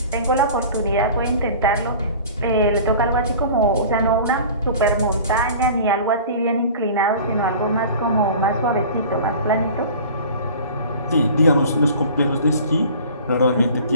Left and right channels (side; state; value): both; inverted; correlation -0.42